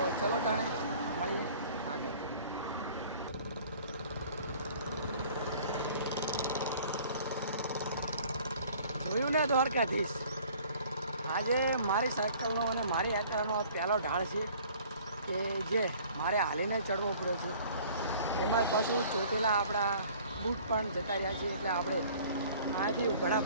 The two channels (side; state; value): both; inverted; correlation -0.52